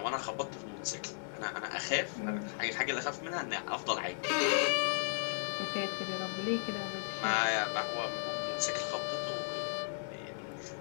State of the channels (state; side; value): silent; right; 54 dB below the other